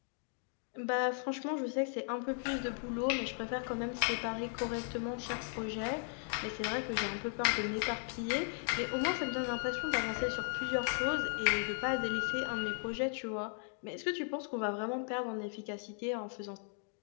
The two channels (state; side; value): silent; right; 53 dB below the other